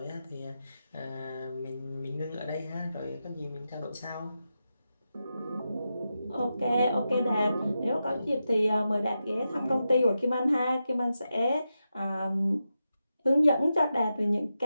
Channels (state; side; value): inverted; both; correlation -0.89